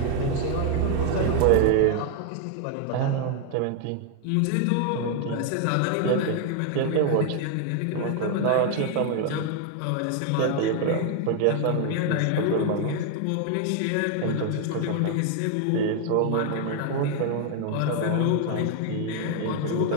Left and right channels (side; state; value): both; different; correlation 0.00